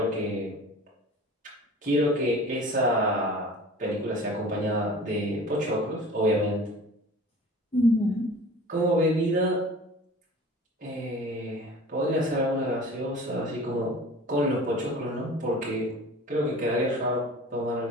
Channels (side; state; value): both; normal; correlation 0.41